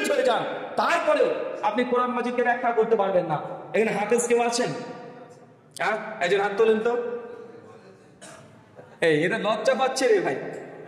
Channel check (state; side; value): identical; both; correlation 1.00